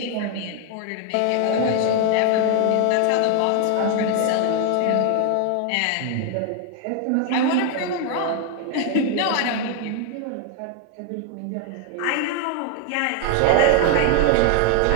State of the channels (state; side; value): different; both; correlation 0.01